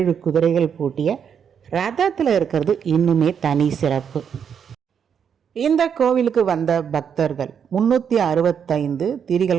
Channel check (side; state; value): left; quieter; 7.6 dB